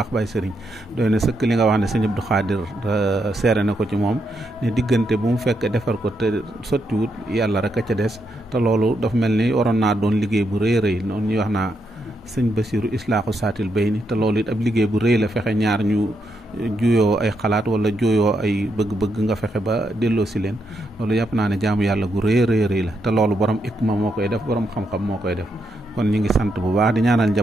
Baye Serigne doy na sëkk li nga wax ne sëñ Abdou Khadir seere na ko ci moom ne diggante bu mu fekk defar ko te sottiwut yàlla rek a ca des te loolu dafa mel ni waroon naa doon liggéey bu rëy rëy noonu ñuy wax naa sëñ Basiru islaaxu saatil bay ni te loolu it ab liggéey bu rëy la fexe ñaar ñu juyoo ay xalaat wala juyoo ay bëgg-bëgg nga fexe ba delloo si leen loolu yàpp naa ne jaamu yàlla gu rëy rëy la te loolu borom ikma moo koy def borom xam-xam moo koy def kon ñu ngi sant bu baax di ñaanal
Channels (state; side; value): normal; both; correlation 0.81